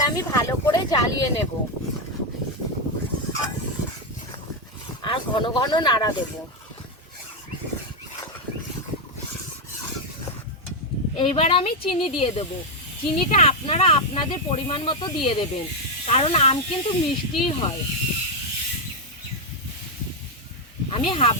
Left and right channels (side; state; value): both; normal; correlation 0.03